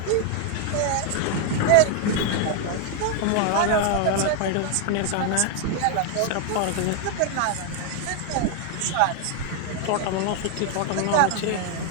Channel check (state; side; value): different; both; correlation 0.00